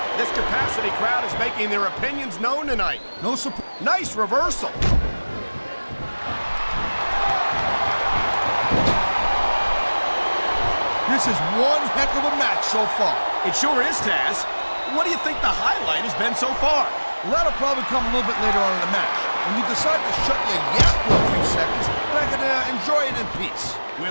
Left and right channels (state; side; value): inverted; both; correlation -1.00